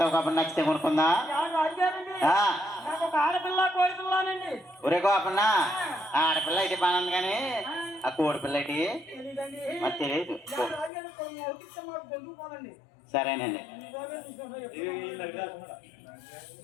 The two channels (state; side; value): drops out; right; at 10.9 s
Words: కాబట్టి నచ్చితే కొనుక్కుందా ఒరే గోపన్న ఆడపిల్ల అయితే బాగుంది కానీ ఆ కోడి పిల్ల అయితే మరి తెలియదు సరేనండి